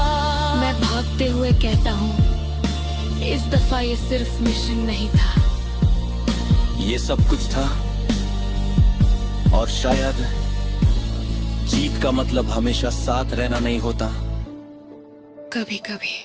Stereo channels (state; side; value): identical; both; correlation 1.00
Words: मैं भागते हुए कहता हूँ, इस दफा ये सिर्फ मिशन नहीं था। ये सब कुछ था, और शायद जीत का मतलब हमेशा साथ रहना नहीं होता। कभी कभी